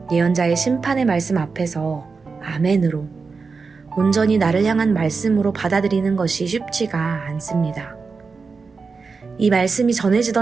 예언자의 심판의 말씀 앞에서 아멘으로 온전히 나를 향한 말씀으로 받아들이는 것이 쉽지가 않습니다. 이 말씀이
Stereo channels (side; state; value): left; quieter; 4.7 dB